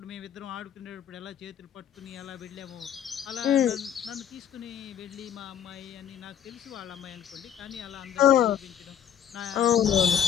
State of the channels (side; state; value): right; quieter; 9.4 dB